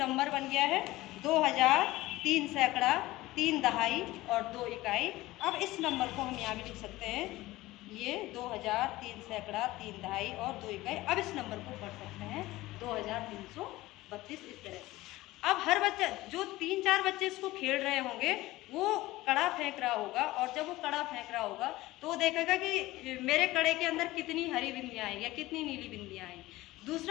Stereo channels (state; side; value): quieter; right; 18.1 dB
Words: बन गया है 2000, 3 सैकड़ा, 3 दहाई और 2 इकाई। अब इस नंबर को हम यहाँ भी लिख सकते हैं, ये 2000, 3 सैकड़ा, 3 दहाई और 2 इकाई। अब इस नंबर को पढ़ सकते हैं 2332, इस तरह से। अब हर बच्चा, जो 3-4 बच्चे इसको खेल रहे होंगे, वो कड़ा फेंक रहा होगा, और जब वो कड़ा फेंक रहा होगा तो वो देखेगा कि मेरे कड़े के अंदर कितनी हरी बिंदियाँ आई या कितनी नीली बिंदियाँ आई।